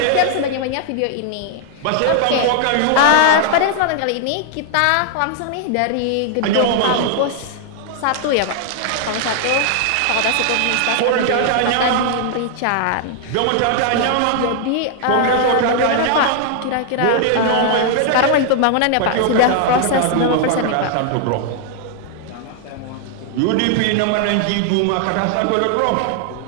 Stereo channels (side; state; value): both; different; correlation 0.00